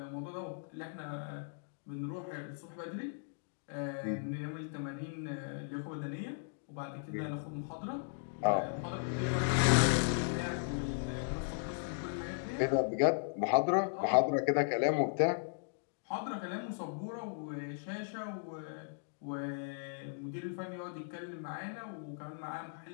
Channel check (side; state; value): right; silent; digital silence